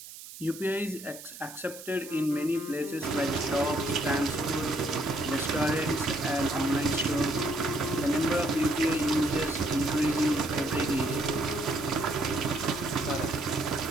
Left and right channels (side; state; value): right; noise; hiss, 15 dB below the sound